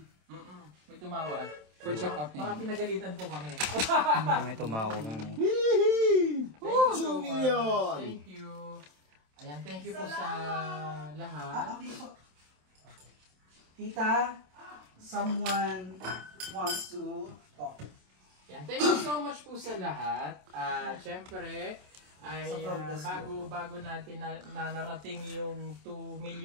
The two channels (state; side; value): late; left; 27 ms